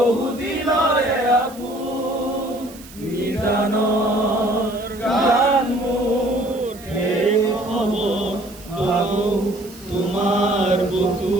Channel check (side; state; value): right; noise; hiss, 20 dB below the sound